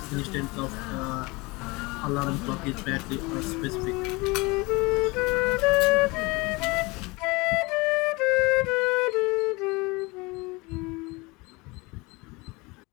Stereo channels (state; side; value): quieter; right; 24.9 dB